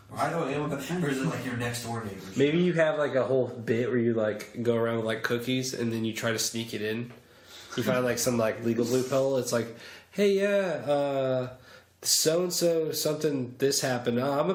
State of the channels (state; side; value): identical; both; correlation 1.00